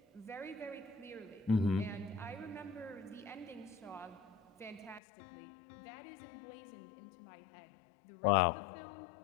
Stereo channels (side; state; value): right; drops out; at 5.0 s